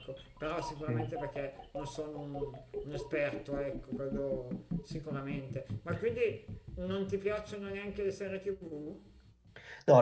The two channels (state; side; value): identical; both; correlation 1.00